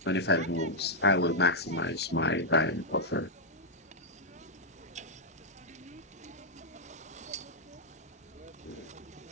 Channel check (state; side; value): normal; both; correlation -0.04